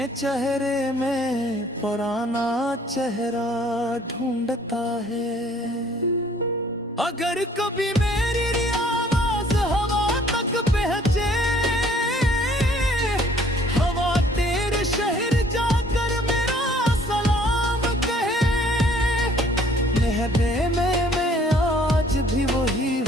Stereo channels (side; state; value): both; normal; correlation 0.58